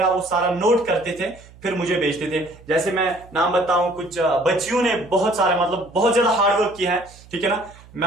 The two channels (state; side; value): noise; right; hum, 23 dB below the sound